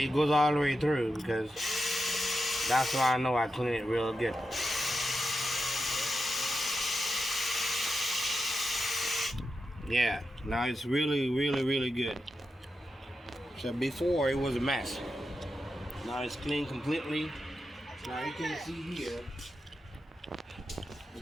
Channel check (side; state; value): both; normal; correlation 0.88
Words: goes all the way through, because that's why I know I clean it real good. Yeah, now it's really, really, really good. So before it was a mess. Now it's clean completely. Now you can see here the